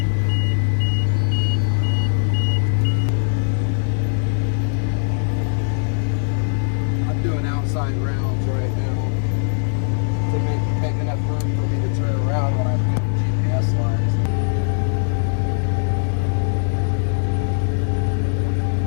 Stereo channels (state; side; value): silent; right; 64 dB below the other